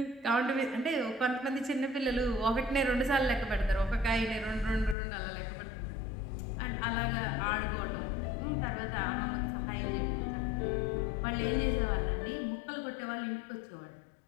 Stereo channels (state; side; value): drops out; right; at 5.0 s